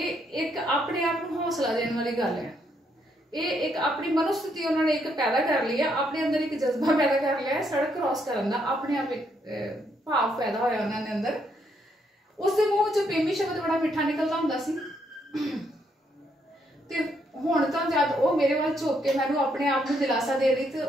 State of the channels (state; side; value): normal; both; correlation 0.74